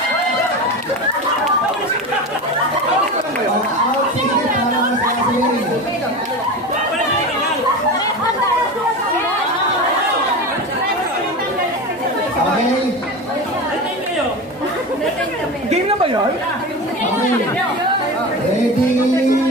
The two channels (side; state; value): both; normal; correlation 0.26